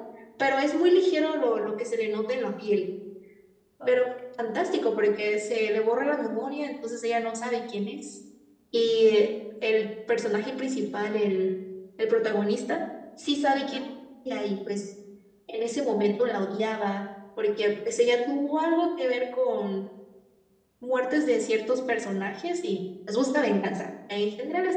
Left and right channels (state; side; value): identical; both; correlation 1.00